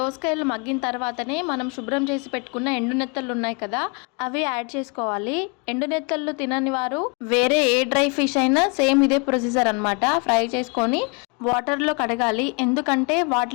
దోసకాయలు మగ్గిన తర్వాతనే మనం శుభ్రం చేసి పెట్టుకున్న ఎండు నెత్తళ్ళు ఉన్నాయి కదా, అవి యాడ్ చేసుకోవాలి. ఎండు నెత్తళ్ళు తినని వారు వేరే ఏ డ్రై ఫిష్ అయినా సేమ్ ఇదే ప్రొసీజర్ అనమాట. ఫ్రై చేసుకొని వాటర్లో కడగాలి. ఎందుకంటే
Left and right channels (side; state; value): right; quieter; 33.3 dB